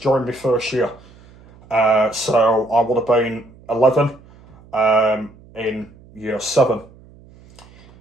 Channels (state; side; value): noise; right; hum, 25 dB below the sound